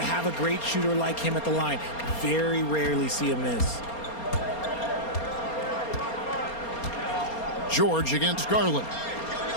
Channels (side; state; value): right; late; 4.3 ms